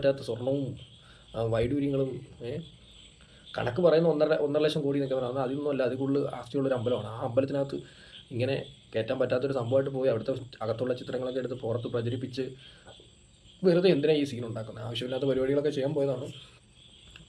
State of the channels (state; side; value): identical; both; correlation 1.00